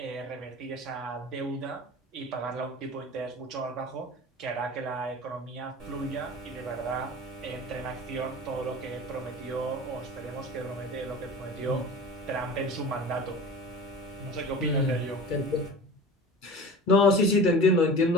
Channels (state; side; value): normal; both; correlation 0.37